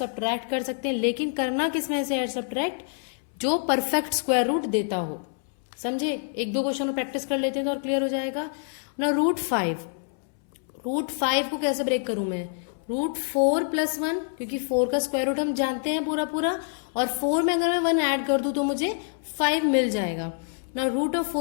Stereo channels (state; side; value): silent; right; 61 dB below the other